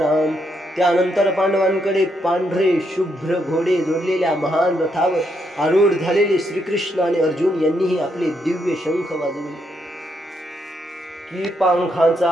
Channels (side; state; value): both; normal; correlation 0.77